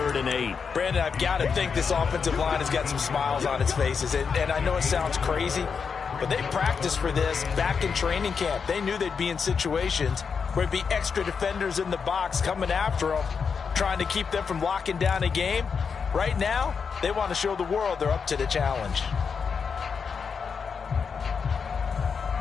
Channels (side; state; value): right; quieter; 5.9 dB